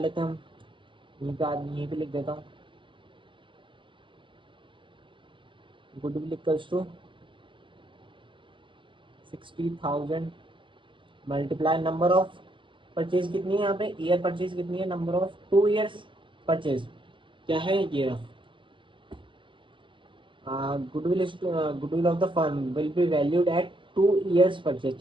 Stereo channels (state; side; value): late; left; 0.24 ms